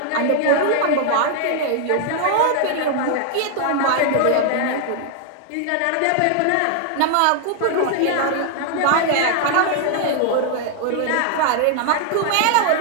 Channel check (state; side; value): different; both; correlation 0.00